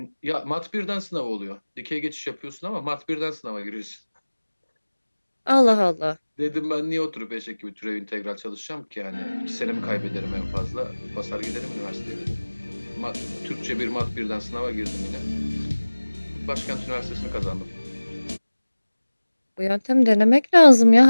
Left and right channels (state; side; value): inverted; both; correlation -1.00